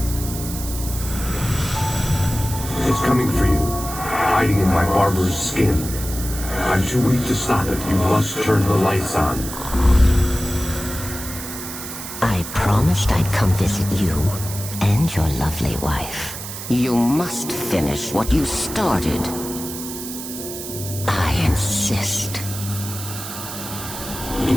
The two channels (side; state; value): right; noise; hiss, 9 dB below the sound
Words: It's coming for you, hiding in my barber's skin. I'm too weak to stop it. You must turn the lights on. I promised I'd come visit you and your lovely wife. You must finish what you started. I insist. You